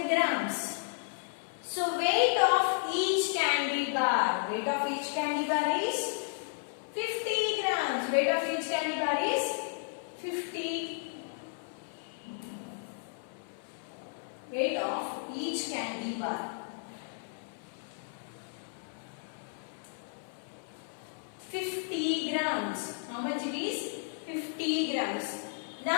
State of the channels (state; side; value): silent; right; 56 dB below the other